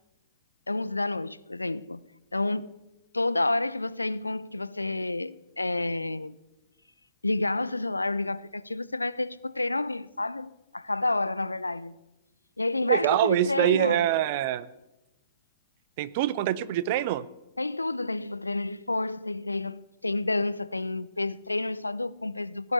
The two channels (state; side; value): inverted; both; correlation -0.70